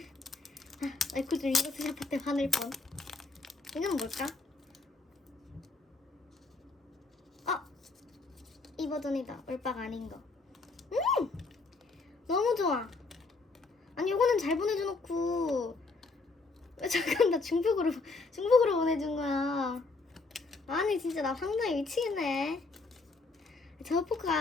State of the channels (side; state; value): right; quieter; 3.7 dB